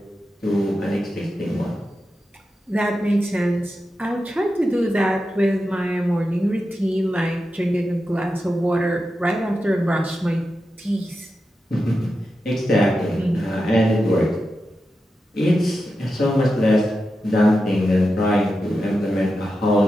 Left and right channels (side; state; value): both; normal; correlation 0.90